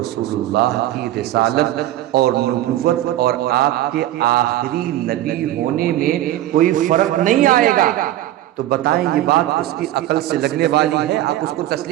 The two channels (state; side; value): quieter; left; 14.0 dB